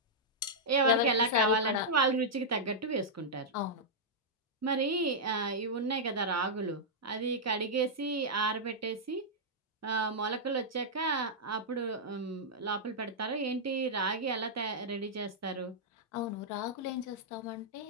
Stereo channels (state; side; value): normal; both; correlation -0.08